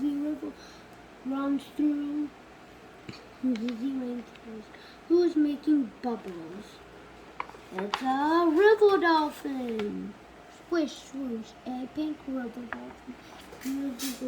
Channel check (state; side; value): identical; both; correlation 1.00